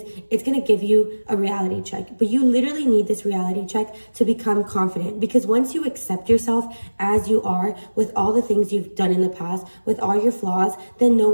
it's going to give you a reality check. But you literally need this reality check to become confident, because once you accept yourself as you are, with all the things you've done in the past, with all your flaws, then no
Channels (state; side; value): inverted; both; correlation -1.00